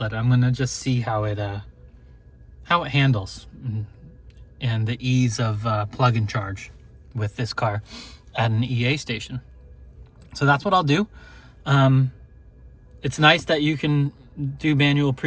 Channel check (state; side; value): identical; both; correlation 1.00